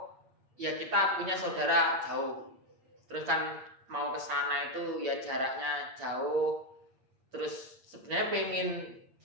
ya kita punya saudara jauh, terus kan mau ke sana itu ya jaraknya jauh, terus sebenarnya pengen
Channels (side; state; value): left; late; 8.6 ms